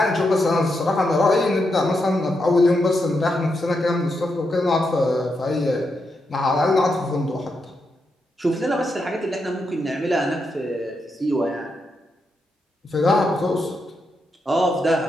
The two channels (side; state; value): both; normal; correlation 0.84